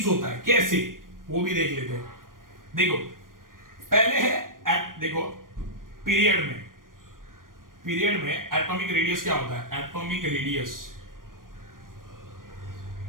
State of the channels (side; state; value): left; late; 0.90 ms